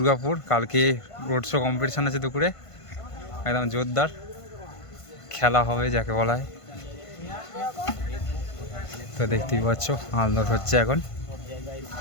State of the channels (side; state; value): right; late; 1.5 ms